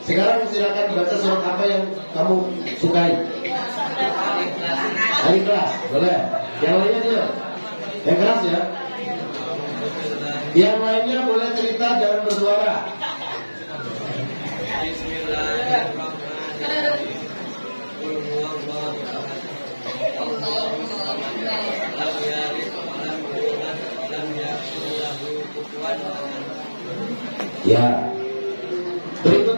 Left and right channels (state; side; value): inverted; both; correlation -1.00